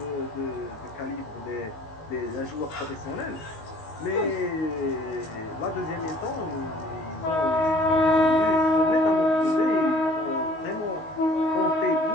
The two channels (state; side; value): late; right; 19 ms